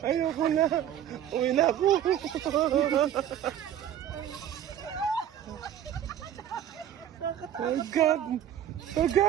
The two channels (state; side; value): quieter; left; 10.5 dB